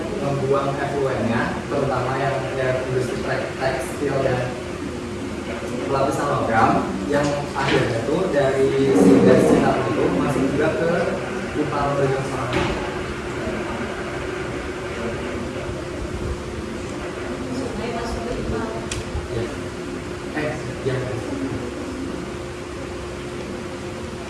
membuang efluennya, terutama yang industri tekstil dan lapisan logam yang akhirnya tuh dari si das Citarum itu masuk juga ke pipa berjam sana.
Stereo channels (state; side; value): identical; both; correlation 1.00